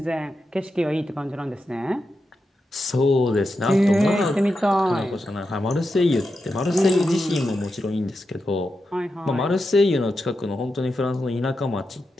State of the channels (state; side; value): normal; both; correlation 0.88